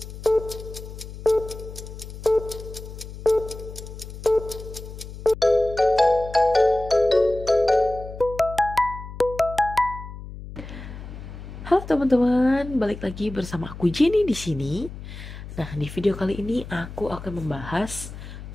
Halo teman-teman, balik lagi bersama aku Jenny di sini. Nah, di video kali ini aku akan membahas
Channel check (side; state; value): left; noise; hum, 12 dB below the sound